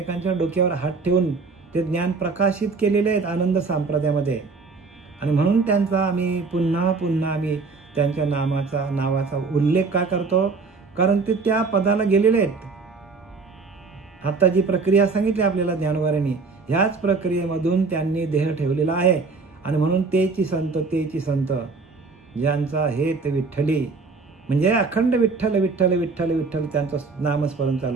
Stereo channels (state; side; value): quieter; left; 4.3 dB